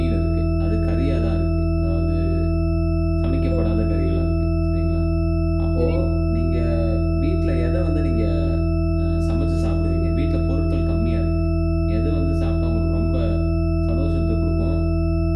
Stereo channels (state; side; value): identical; both; correlation 1.00